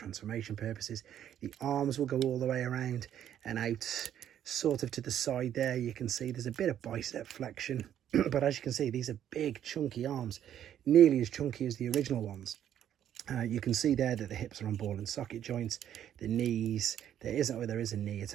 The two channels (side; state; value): left; quieter; 10.4 dB